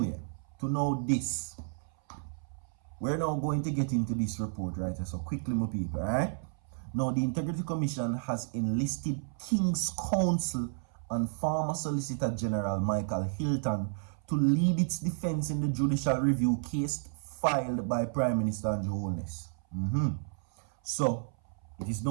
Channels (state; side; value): silent; left; 57 dB below the other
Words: to know this, we're now going to get into this report, right? So quickly, my people, alright? Now, the Integrity Commission has enlisted King's Counsel and former Solicitor General Michael Hilton to lead its defense in the judicial review case filed by Prime Minister Holness. So, it is